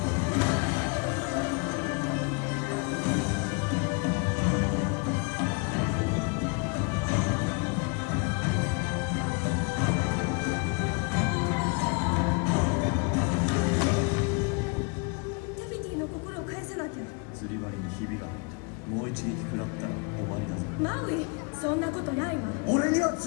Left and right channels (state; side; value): quieter; right; 32.5 dB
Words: 釣り針にひびが入った。もう一撃食らマウイ、そんなことないわ。俺には